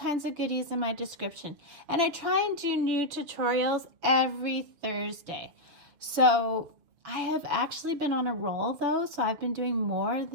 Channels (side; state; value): left; late; 6.8 ms